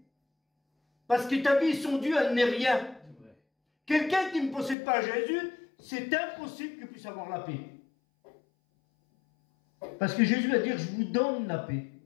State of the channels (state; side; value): drops out; right; at 4.8 s